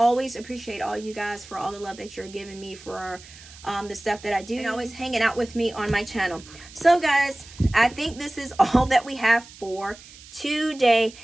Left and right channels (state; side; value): noise; right; hiss, 20 dB below the sound